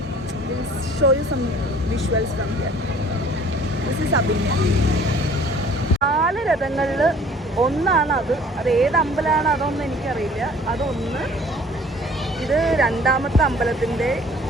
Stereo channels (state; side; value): normal; both; correlation 0.52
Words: Show you some visuals from here. This is Abhinaya. 4 രഥങ്ങളിൽ ഒന്നാണ് അത് ഏത് അമ്പലമാണ് അതൊന്നും എനിക്കറിയില്ല. അതൊന്ന്. ഇത് 2ാമത്തെ അമ്പലത്തിൻ്റെ.